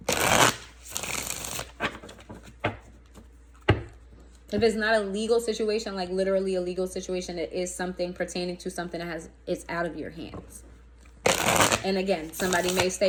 If it's not a legal situation, like literally a legal situation, it is something pertaining to something that it's out of your hands. And again, somebody may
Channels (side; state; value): both; identical; correlation 1.00